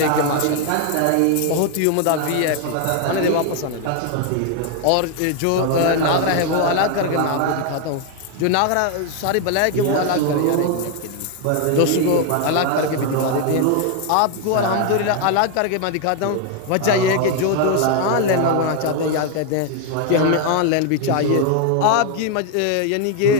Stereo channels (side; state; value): both; different; correlation 0.01